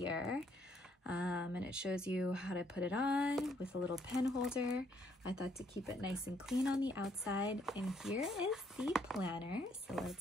And it shows you how to put it on with a little pen holder. I thought to keep it nice and clean on the outside. And here is the planner. So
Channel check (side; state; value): both; normal; correlation 0.69